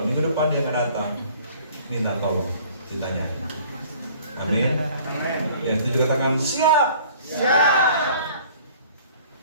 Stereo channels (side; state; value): both; inverted; correlation -0.52